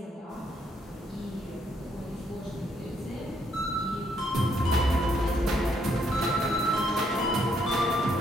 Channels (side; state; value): both; normal; correlation 0.72